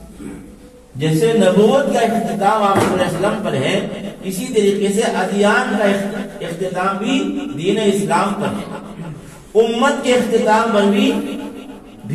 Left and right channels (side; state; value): both; identical; correlation 1.00